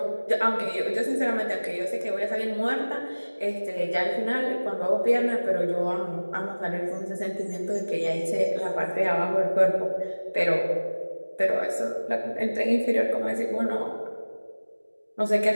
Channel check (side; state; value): both; inverted; correlation -1.00